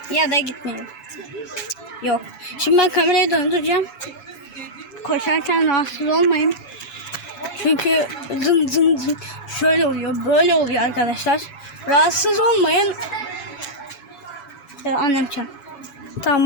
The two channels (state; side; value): late; right; 7.1 ms